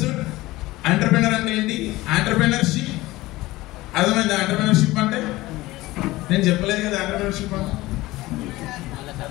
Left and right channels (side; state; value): right; quieter; 18.8 dB